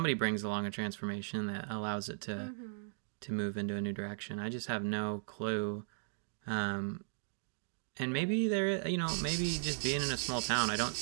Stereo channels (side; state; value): left; silent; digital silence